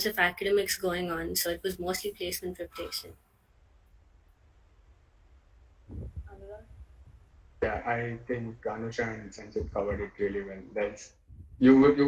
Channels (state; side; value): identical; both; correlation 1.00